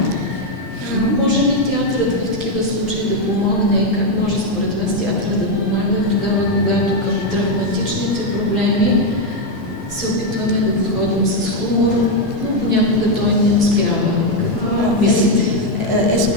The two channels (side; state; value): right; late; 5.9 ms